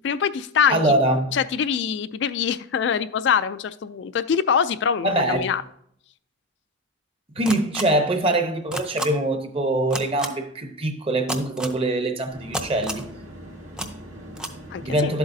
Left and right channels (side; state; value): both; normal; correlation 0.19